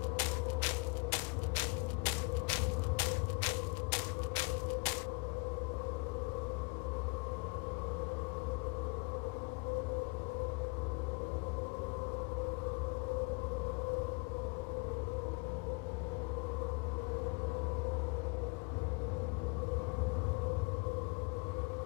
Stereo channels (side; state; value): right; quieter; 29.2 dB